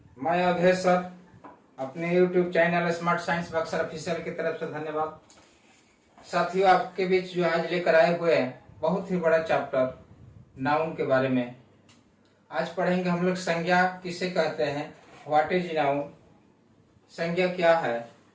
मैं अभय sir अपने YouTube channel smart science Buxar official की तरफ से धन्यवाद। साथियों, आपके बीच जो आज लेकर आए हुए हैं बहुत ही बड़ा चैप्टर नाउन के बारे में। आज पढ़ेंगे हम लोग संज्ञा किसे कहते हैं, व्हाट इज नाउन। संज्ञा क्या है?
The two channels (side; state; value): both; identical; correlation 1.00